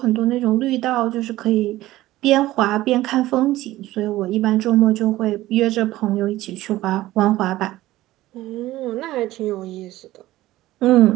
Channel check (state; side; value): quieter; left; 16.3 dB